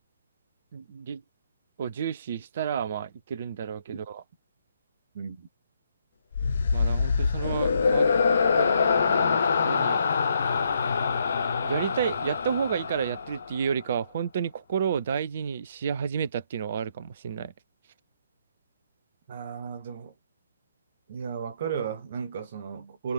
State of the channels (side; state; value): both; inverted; correlation -0.74